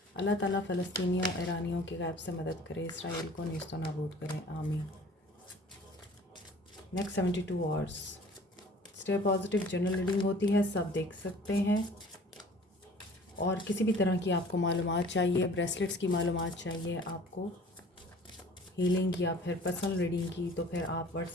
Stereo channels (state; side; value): normal; both; correlation 0.49